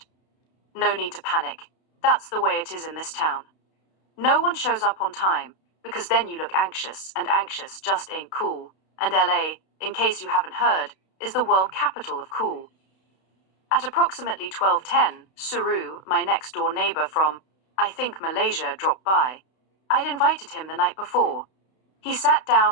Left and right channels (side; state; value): right; late; 32 ms